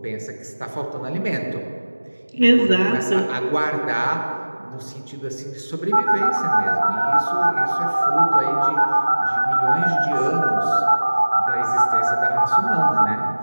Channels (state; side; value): inverted; both; correlation -1.00